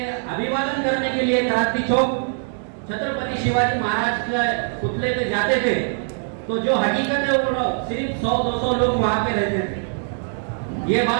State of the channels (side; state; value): left; silent; digital silence